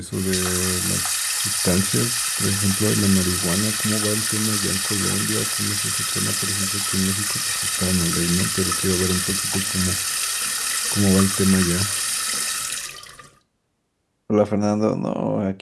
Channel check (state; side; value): identical; both; correlation 1.00